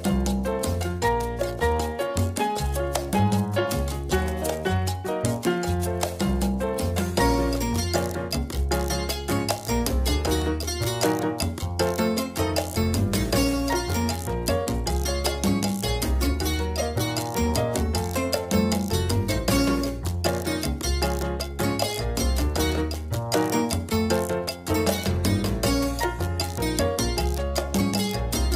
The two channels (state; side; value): identical; both; correlation 1.00